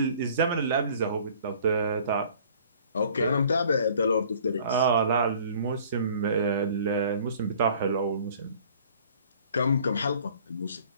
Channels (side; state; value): both; inverted; correlation -0.52